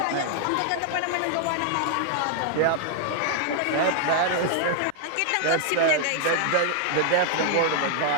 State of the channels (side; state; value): both; different; correlation 0.00